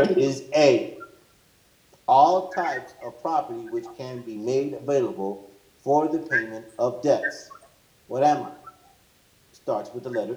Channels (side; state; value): both; identical; correlation 1.00